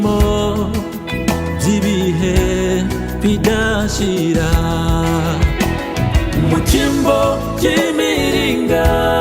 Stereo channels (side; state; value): both; identical; correlation 1.00